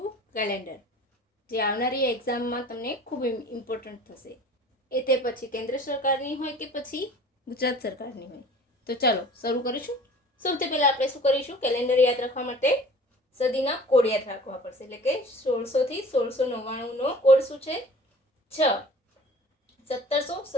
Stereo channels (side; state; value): both; normal; correlation 0.46